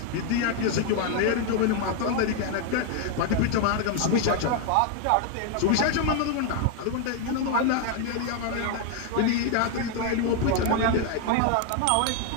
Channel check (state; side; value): different; both; correlation 0.01